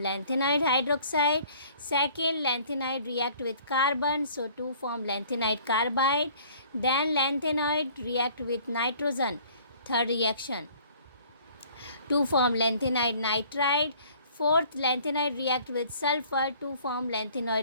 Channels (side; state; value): both; inverted; correlation -0.54